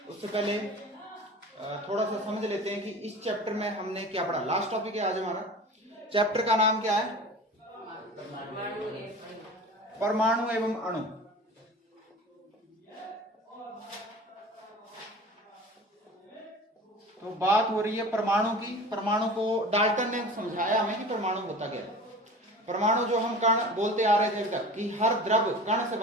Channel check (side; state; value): both; normal; correlation 0.38